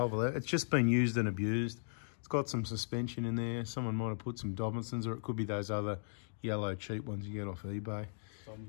or 11. It's just been used and abused. It's got some suspension in there. Someone might have put some Dobinsons, or it could be those other yellow cheap ones you get off eBay.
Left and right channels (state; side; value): silent; right; digital silence